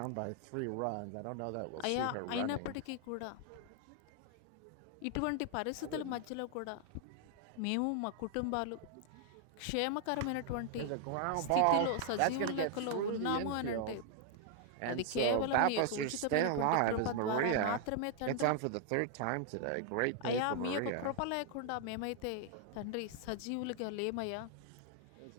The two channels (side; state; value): both; different; correlation 0.00